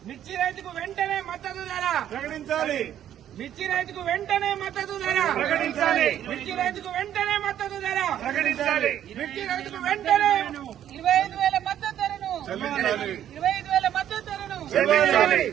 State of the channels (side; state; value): left; quieter; 10.8 dB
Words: మిర్చి రైతుకు వెంటనే మద్దతు ధర, ప్రకటించాలి, మిర్చి రైతుకు వెంటనే మద్దతు ధర, ప్రకటించాలి, మిర్చి రైతుకు వెంటనే మద్దతు ధర, ప్రకటించాలి. మిర్చి రైతుకు వెంటనే 25,000 మద్దతు ధరను, చెల్లించాలి, 25,000 మద్దతు ధరను, చెల్లించాలి,